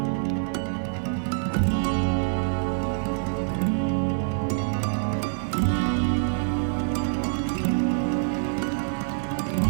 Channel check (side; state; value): left; silent; digital silence